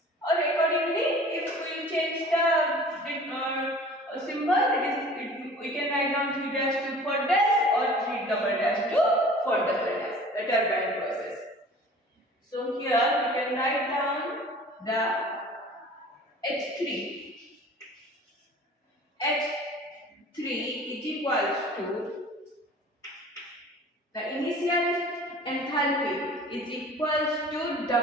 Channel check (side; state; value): both; normal; correlation 0.45